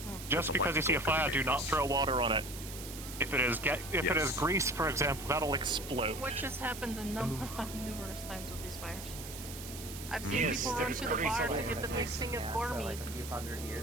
Just because you see a fire, do not throw water on it. If it is grease, for example, that'll explode. Which has happened numerous times with these fires. I've seen people run to the bar to get the big thing of boar meat. Like a few hundred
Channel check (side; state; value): right; noise; hiss, 11 dB below the sound